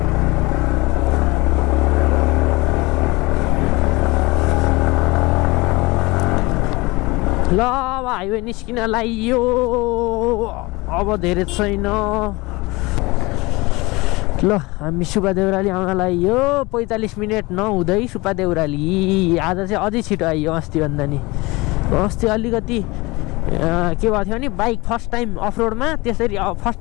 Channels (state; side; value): quieter; right; 23.2 dB